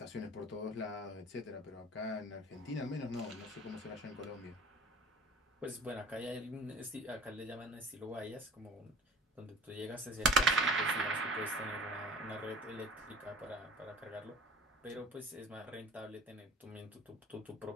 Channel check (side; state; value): both; normal; correlation 0.44